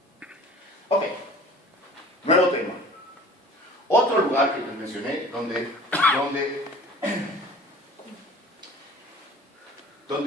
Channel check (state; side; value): normal; both; correlation 0.45